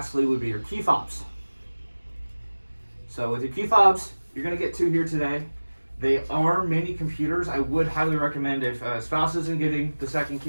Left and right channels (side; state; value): both; inverted; correlation -1.00